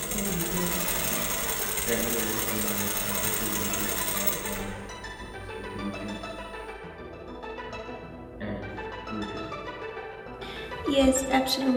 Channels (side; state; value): both; identical; correlation 1.00